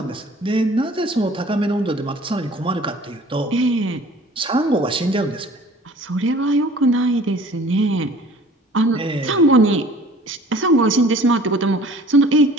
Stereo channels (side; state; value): both; normal; correlation 0.49